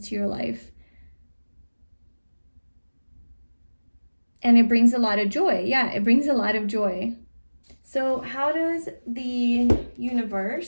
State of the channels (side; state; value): both; inverted; correlation -1.00